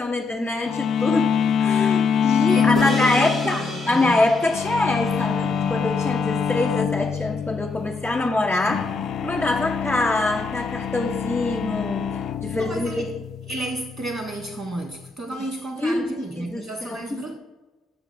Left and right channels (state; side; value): quieter; right; 3.6 dB